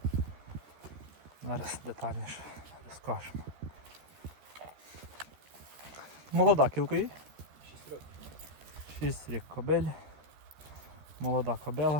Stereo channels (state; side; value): late; left; 13 ms